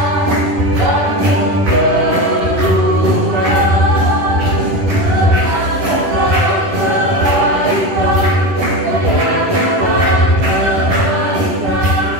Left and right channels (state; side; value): late; left; 10 ms